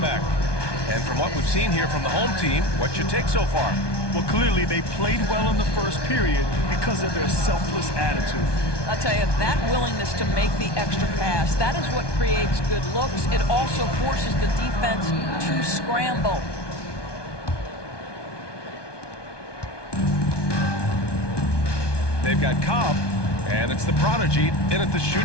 And from what we've seen here from the home team, what's your take so far? Well, clearly they played well in the first period because of their selfless attitude. I'll tell you, that willingness to make the extra pass, that is what creates good looks. It also forces the defense to scramble. They've got Cobb, and it's the prodigy in at the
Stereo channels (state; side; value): late; right; 1.2 ms